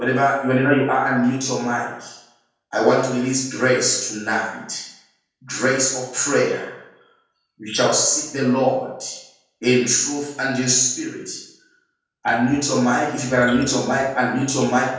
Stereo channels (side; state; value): both; identical; correlation 1.00